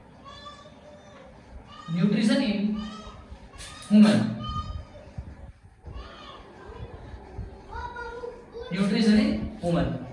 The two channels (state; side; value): identical; both; correlation 1.00